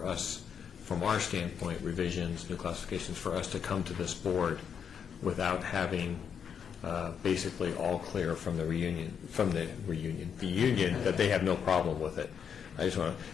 us, from our standpoint, revisions, new classifications, for us to come to this board without having basically all clear from the union that they have no problem with it. I just want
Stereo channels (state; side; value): quieter; right; 7.5 dB